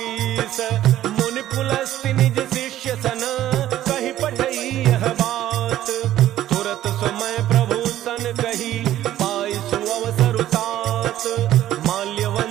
मुनि पुलस्ति निज शिष्य सन कहि पठई यह बात। तुरत समय प्रभु सन कही पाई सुअवसर तात।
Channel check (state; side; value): quieter; left; 13.0 dB